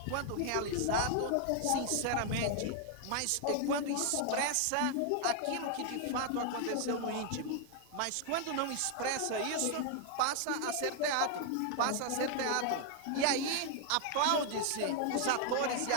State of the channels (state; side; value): different; both; correlation 0.00